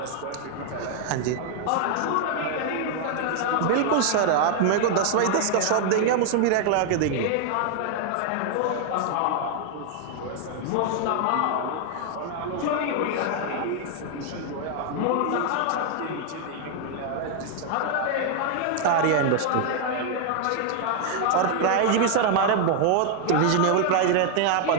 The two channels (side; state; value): both; different; correlation 0.00